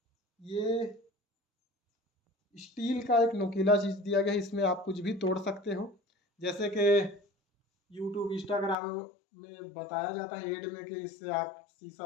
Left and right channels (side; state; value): right; drops out; at 8.8 s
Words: ये स्टील का एक नुकीला चीज़ दिया गया है, इसमें आप कुछ भी तोड़ सकते हो। जैसे कि यूट्यूब इंस्टाग्राम में बताया जाता है एड में कि इससे आप